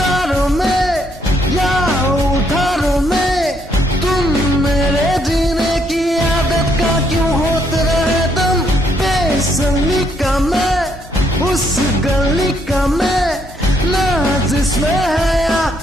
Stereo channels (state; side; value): normal; both; correlation 0.72